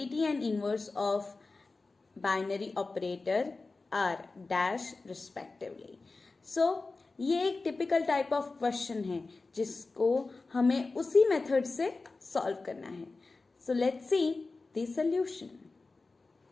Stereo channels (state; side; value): quieter; right; 3.7 dB